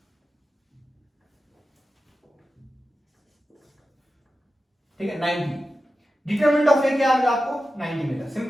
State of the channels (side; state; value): both; normal; correlation 0.93